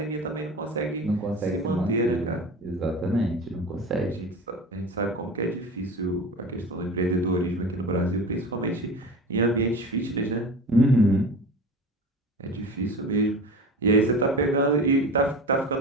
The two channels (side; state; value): both; normal; correlation 0.32